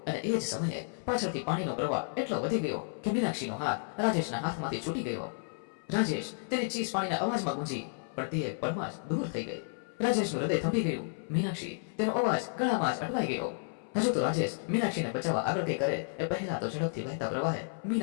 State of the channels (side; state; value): right; silent; 56 dB below the other